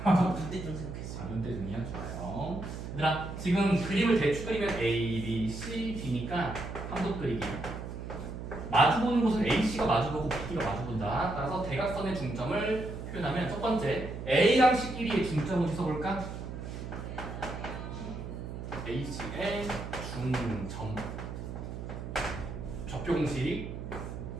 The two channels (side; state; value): right; noise; hum, 8 dB below the sound